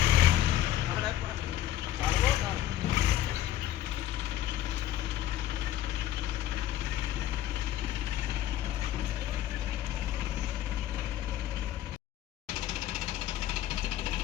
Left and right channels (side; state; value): right; quieter; 12.7 dB